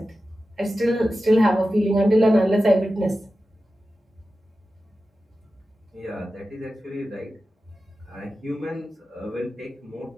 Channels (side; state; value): both; normal; correlation 0.93